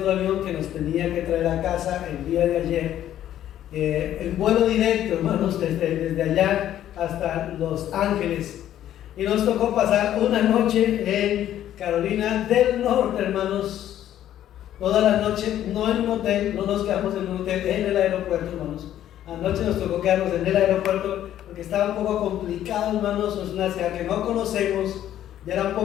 avión que nos tenía que traer a casa el día de ayer. El vuelo directo, hermanos, desde allá hasta Los Ángeles. Y nos tocó pasar una noche en Carolina del Norte, hermanos. Toda la noche, no en un hotel, no nos quedamos en un hotel, en el aeropuerto, hermanos. Anoche nos tocó quedarnos en el aeropuerto porque estaba un poco complicado, hermanos. Es una ciudad que no conocemos, ya era un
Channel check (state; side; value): quieter; right; 11.7 dB